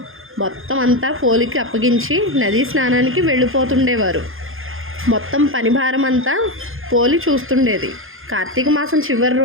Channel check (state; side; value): late; left; 0.60 ms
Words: మొత్తం అంతా పోలికి అప్పగించి నదీ స్నానానికి వెళ్ళిపోతుండేవారు. మొత్తం పని భారం అంతా పోలి చూస్తుండేది. కార్తీక మాసం చివరి